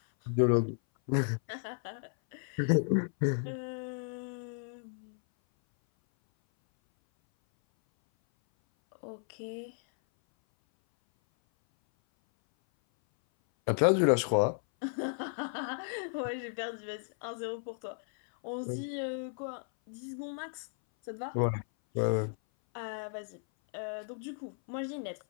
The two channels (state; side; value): silent; right; 55 dB below the other